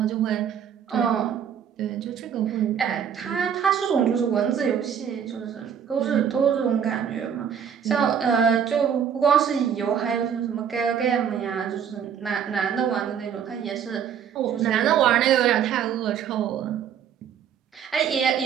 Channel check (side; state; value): left; quieter; 8.2 dB